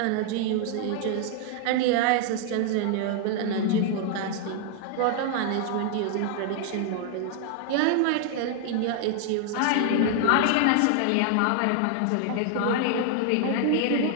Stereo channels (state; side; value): different; both; correlation 0.00